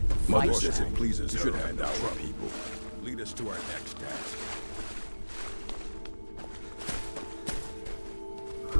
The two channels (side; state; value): both; inverted; correlation -1.00